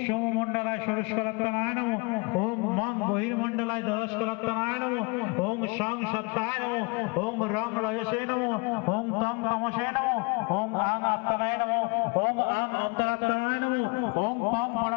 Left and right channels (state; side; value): quieter; right; 29.5 dB